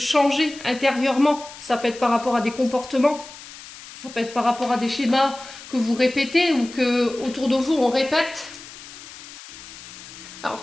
intérieurement. Ça peut être par rapport à des comportements, ça peut être par rapport à des schémas que vous répétez ou que autour de vous on répète.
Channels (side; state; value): left; noise; hiss, 16 dB below the sound